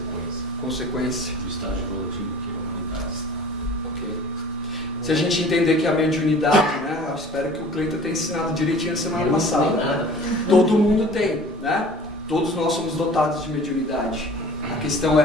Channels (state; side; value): normal; both; correlation 0.46